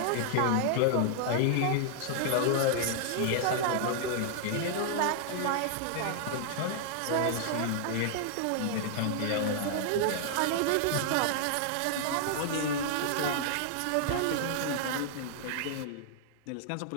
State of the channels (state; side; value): different; both; correlation -0.01